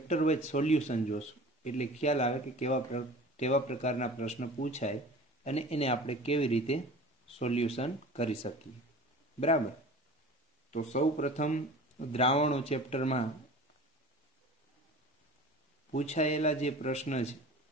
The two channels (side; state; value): both; normal; correlation 0.40